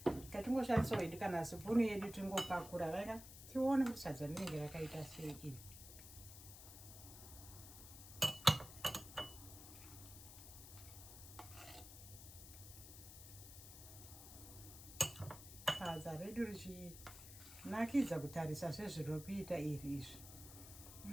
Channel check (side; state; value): left; noise; hiss, 14 dB below the sound